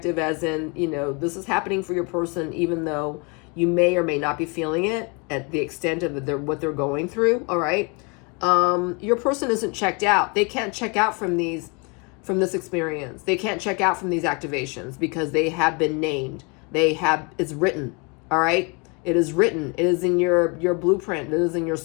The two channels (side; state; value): right; quieter; 31.8 dB